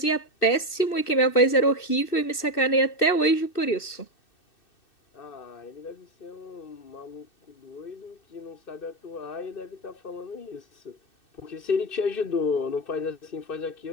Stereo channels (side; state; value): right; late; 2.6 ms